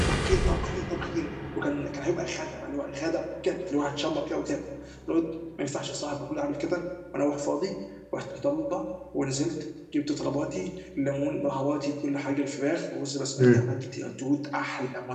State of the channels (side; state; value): both; identical; correlation 1.00